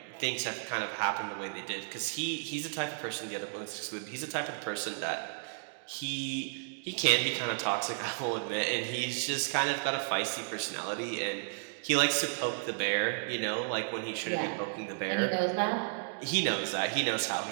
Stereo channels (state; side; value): silent; left; digital silence